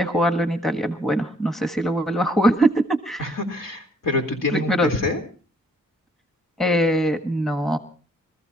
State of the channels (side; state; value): both; normal; correlation 0.64